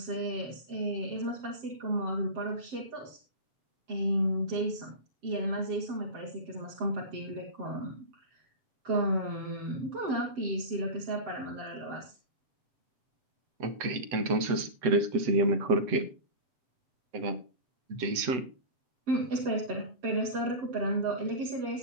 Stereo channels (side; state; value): left; late; 7.9 ms